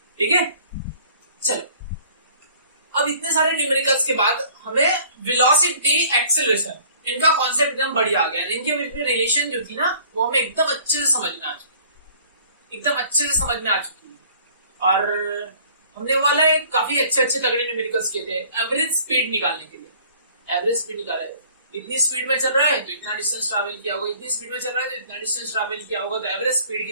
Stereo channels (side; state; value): both; inverted; correlation -0.53